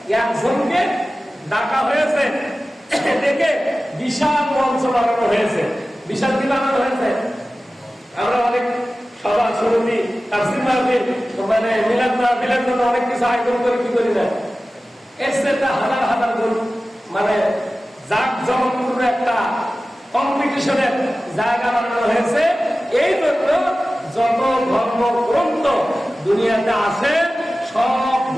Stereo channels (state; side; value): normal; both; correlation 0.96